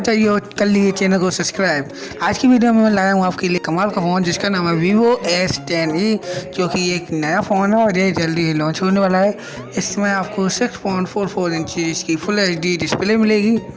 जाइए और कर लीजिए चैनल को सब्सक्राइब। आज की वीडियो में मैं लाया हूँ आपके लिए कमाल का फ़ोन जिसका नाम है Vivo s10e, जो कि एक नया फ़ोन है और ये जल्दी ही लॉन्च होने वाला है। इसमें आपको 6.44 इंच की फुल HD डिस्प्ले मिलेगी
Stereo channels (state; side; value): identical; both; correlation 1.00